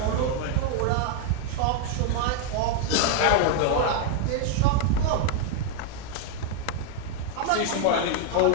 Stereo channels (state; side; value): different; both; correlation 0.00